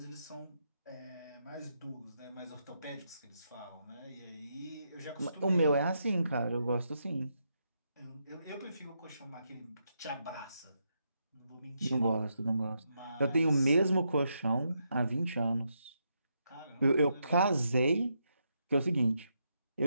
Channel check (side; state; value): both; inverted; correlation -0.81